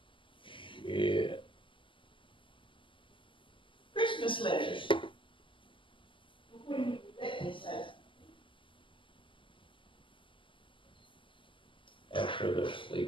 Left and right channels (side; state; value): right; late; 0.25 ms